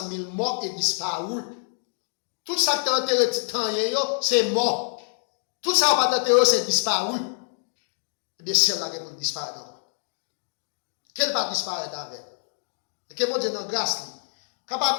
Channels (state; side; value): silent; right; digital silence